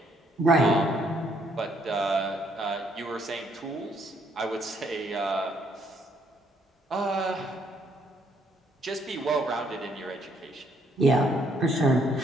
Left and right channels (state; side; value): normal; both; correlation 0.69